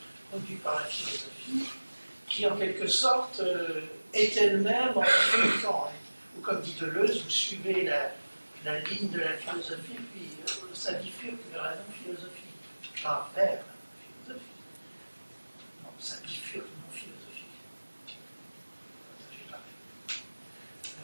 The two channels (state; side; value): inverted; both; correlation -1.00